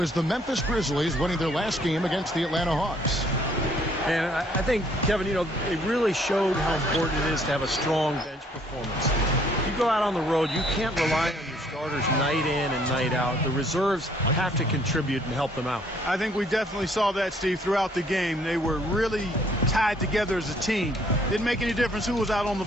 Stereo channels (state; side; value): normal; both; correlation 0.63